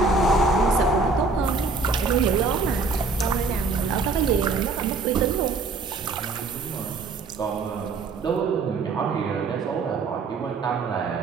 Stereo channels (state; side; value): quieter; left; 4.0 dB